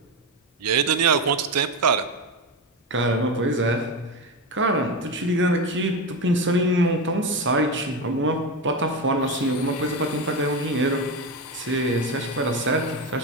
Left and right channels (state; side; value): normal; both; correlation 0.17